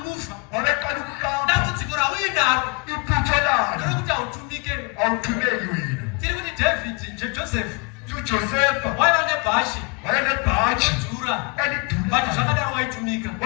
Dambudziko rauinaro. Ndokuti autumike. Tiri kuti David, Joseph. Waiva nebhashi. Dhura. But zvakadaro waitumika.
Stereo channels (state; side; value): quieter; right; 30.6 dB